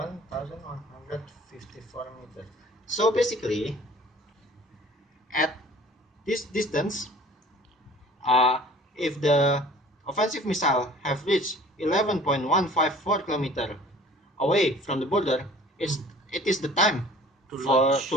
meters. So basically, at this distance, if the offensive missile have reached 11.154 kilometer away from the border, it is the time to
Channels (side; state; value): both; normal; correlation 0.48